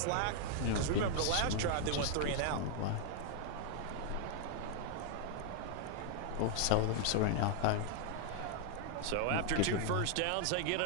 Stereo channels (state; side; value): different; both; correlation 0.00